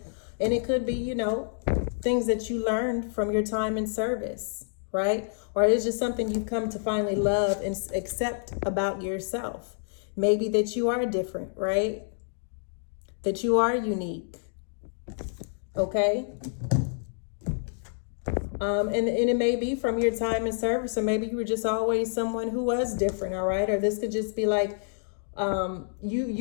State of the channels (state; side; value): silent; right; digital silence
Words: And it could be, things that you learned from your time in service, right? Or it's just something you've come to finally love and accept about yourself. Maybe that you are different, right? That you are unique, okay? And it may be from your time in service, or maybe you were just always someone who was different, all right? Or this could just be like